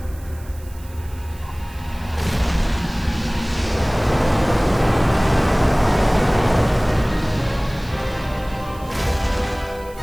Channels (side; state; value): right; noise; hiss, 23 dB below the sound